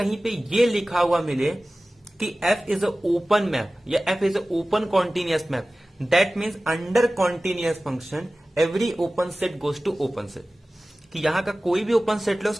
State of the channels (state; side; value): normal; both; correlation 0.97